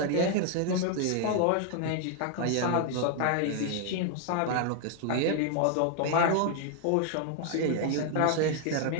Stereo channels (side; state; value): both; different; correlation 0.00